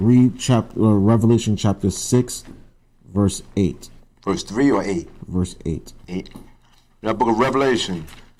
Revelation chapter 6, verse 8. Verse 3 or 8? Verse 8. 8. The book of Revelation,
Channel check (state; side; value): identical; both; correlation 1.00